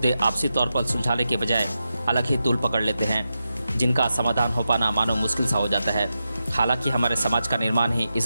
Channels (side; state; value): both; inverted; correlation -0.89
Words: आपसी तौर पर सुलझाने के बजाय अलग ही तूल पकड़ लेते हैं, जिनका समाधान हो पाना मानो मुश्किल सा हो जाता है। हालांकि हमारे समाज का निर्माण ही